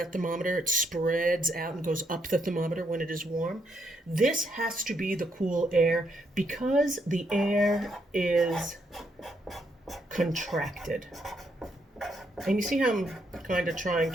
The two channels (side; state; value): both; normal; correlation 0.76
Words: thermometer, it spreads out and goes up the thermometer when it is warm, this has to be the cool air because the air is contracted. And you see how I'm kind of trying